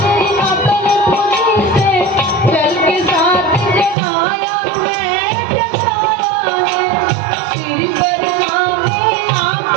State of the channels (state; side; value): drops out; left; at 4.0 s